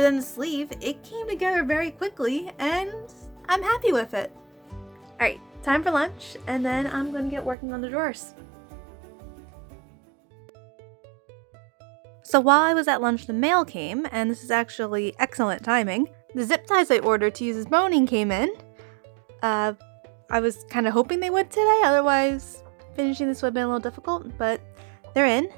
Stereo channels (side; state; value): left; drops out; at 7.6 s